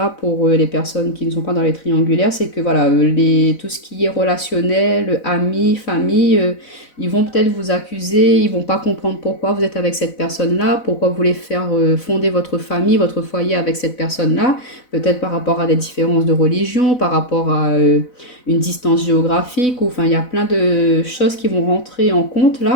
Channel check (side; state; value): right; late; 4.0 ms